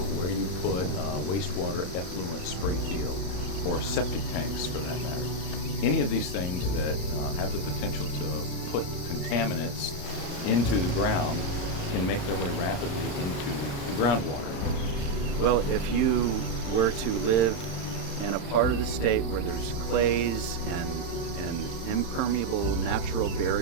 where you put wastewater effluent spring field, or septic tanks for that matter. Any of these things that have the potential to put contaminants into the ground can make their way rapidly into the groundwater. Well, if you were to live in a part of the state where there's clays and impermeable natural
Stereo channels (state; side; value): late; right; 35 ms